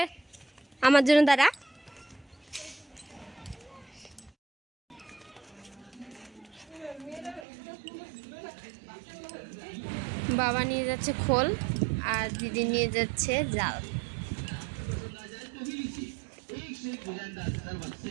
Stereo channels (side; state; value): left; drops out; at 7.5 s